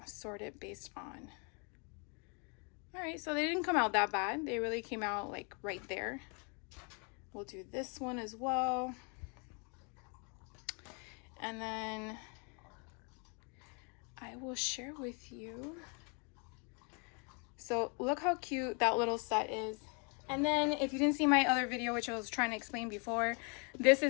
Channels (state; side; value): quieter; right; 35.7 dB